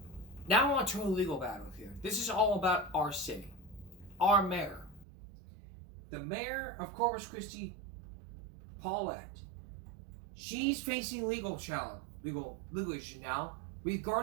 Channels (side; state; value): left; drops out; at 5.1 s